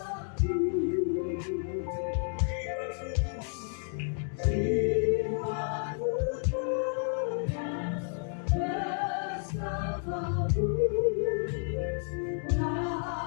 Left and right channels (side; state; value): right; silent; 57 dB below the other